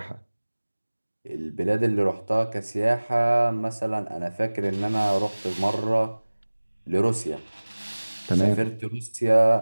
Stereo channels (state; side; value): inverted; both; correlation -1.00